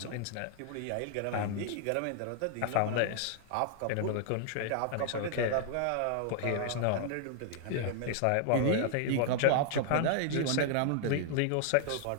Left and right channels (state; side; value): different; both; correlation 0.00